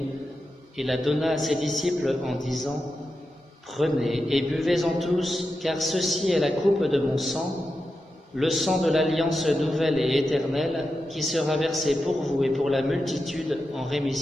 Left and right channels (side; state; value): both; normal; correlation 0.89